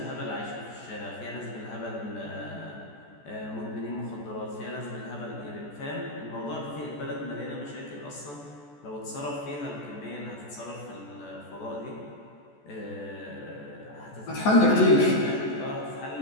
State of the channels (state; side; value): late; right; 14 ms